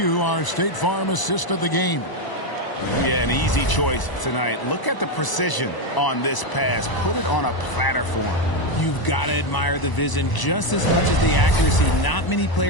our State Farm assist of the game. Yeah, an easy choice tonight. Look at the precision on this pass. Put it on a platter for him. You've got to admire the vision just as much as the accuracy. Not many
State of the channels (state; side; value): late; right; 1.0 ms